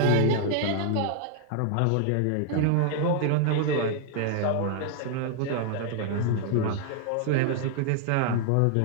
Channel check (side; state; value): both; different; correlation 0.00